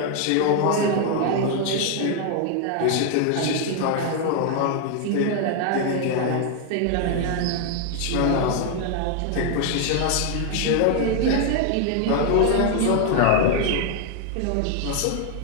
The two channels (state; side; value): different; both; correlation 0.00